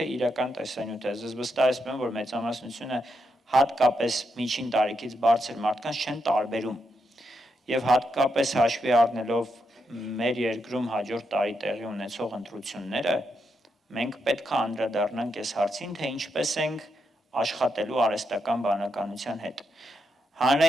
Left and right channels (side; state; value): both; normal; correlation 0.82